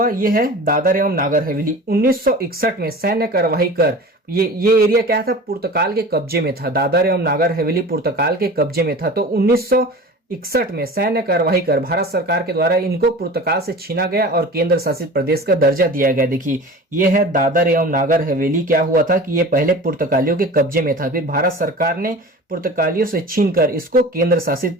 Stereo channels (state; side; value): normal; both; correlation 0.37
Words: ये है दादर एवं नागर हवेली। 1961 में सैन्य कार्यवाही कर ये एरिया क्या था? पुर्तगाल के कब्जे में था। दादर एवं नागर हवेली पुर्तगाल के कब्जे में था। तो 1961 में सैन्य कार्यवाही कर भारत सरकार के द्वारा इनको पुर्तगाल से छीना गया और केंद्र शासित प्रदेश का दर्जा दिया गया। देखिए, ये है दादर एवं नागर हवेली। क्या हुआ था कि ये पहले पुर्तगालियों के कब्जे में था, फिर भारत सरकार ने पुर्तगालियों से छीनकर इसको केंद्र शासित